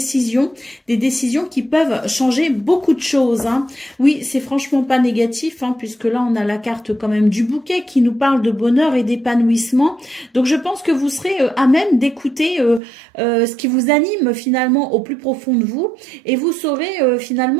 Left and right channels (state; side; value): drops out; left; at 12.8 s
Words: des décisions qui peuvent changer beaucoup de choses. Oui, c'est franchement pas négatif, puisque là on a la carte quand même du bouquet qui nous parle de bonheur et d'épanouissement. Donc je pense que vous serez à même d'écouter ce qui vous anime finalement au plus profond de vous, et vous saurez